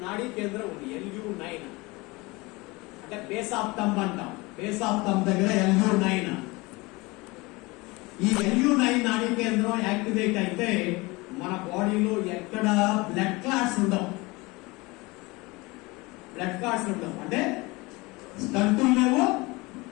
నాడీ కేంద్రం ఉంది. LU9 అంటే బేస్ ఆఫ్ థంబ్ అంటాం. బేస్ ఆఫ్ థంబ్ దగ్గర LU9. ఈ LU9 నాడీ కేంద్రం యాక్టివేట్ అయితే మన బాడీలో ఎక్కడ బ్లడ్ క్లాట్స్ ఉండవు. అంటే స్టంటులు లేవు,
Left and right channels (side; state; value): right; quieter; 23.7 dB